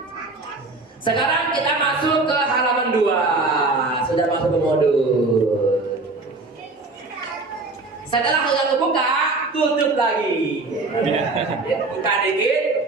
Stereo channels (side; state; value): left; quieter; 3.4 dB